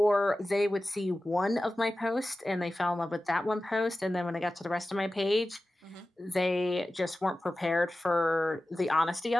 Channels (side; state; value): both; normal; correlation 0.95